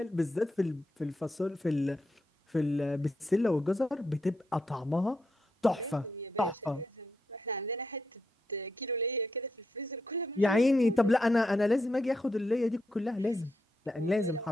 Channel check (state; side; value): normal; both; correlation 0.82